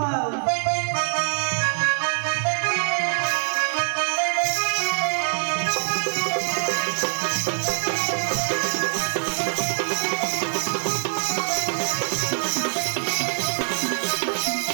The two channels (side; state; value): left; silent; digital silence